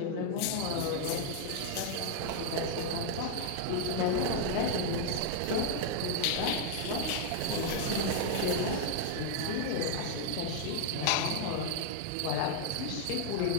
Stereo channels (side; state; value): both; different; correlation 0.00